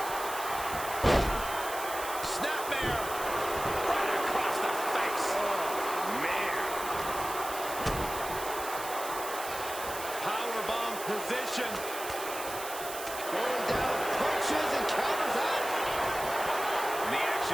Position. Going down, punches and counters out. And the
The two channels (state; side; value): noise; right; hiss, 9 dB below the sound